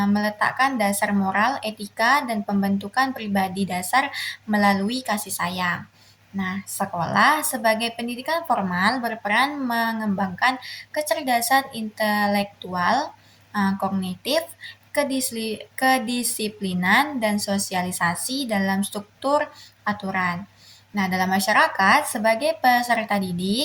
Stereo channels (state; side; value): identical; both; correlation 1.00